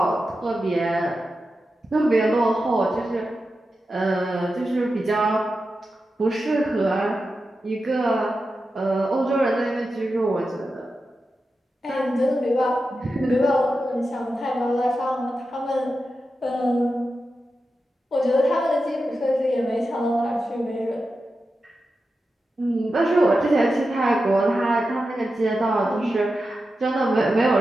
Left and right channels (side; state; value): both; normal; correlation 0.90